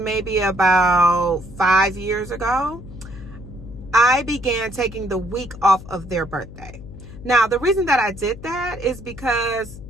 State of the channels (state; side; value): noise; left; hum, 15 dB below the sound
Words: about 5 years ago, I began taking the week off of their birthday. Now, the reason that I did that is because